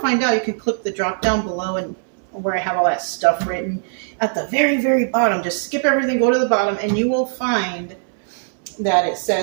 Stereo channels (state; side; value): silent; left; digital silence